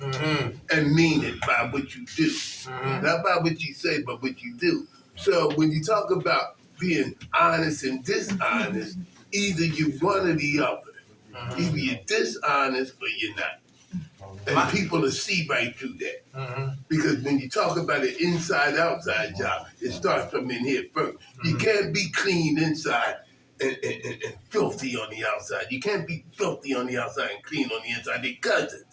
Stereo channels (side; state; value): both; identical; correlation 1.00